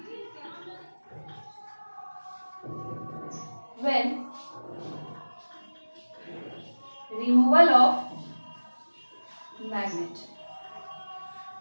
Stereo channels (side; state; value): both; inverted; correlation -1.00